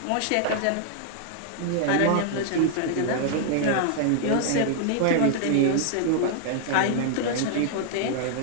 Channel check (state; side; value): different; both; correlation -0.01